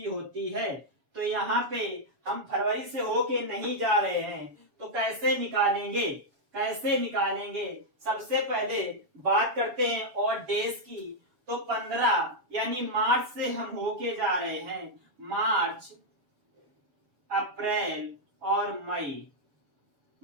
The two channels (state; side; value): late; left; 7.2 ms